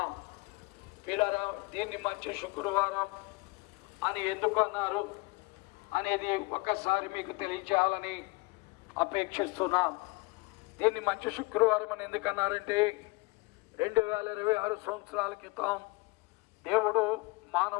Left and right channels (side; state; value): right; quieter; 25.4 dB